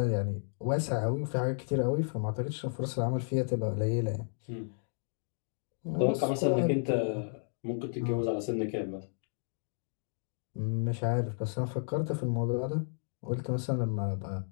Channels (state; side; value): silent; right; digital silence